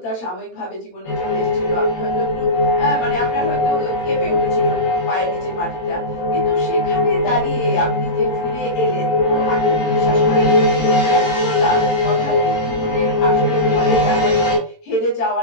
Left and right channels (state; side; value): late; right; 18 ms